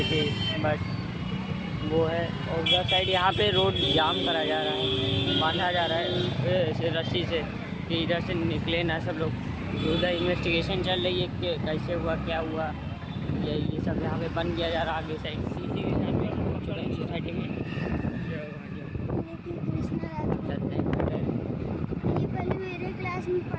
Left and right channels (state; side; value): identical; both; correlation 1.00